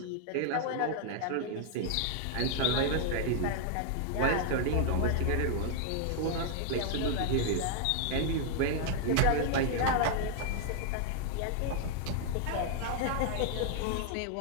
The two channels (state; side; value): different; both; correlation 0.00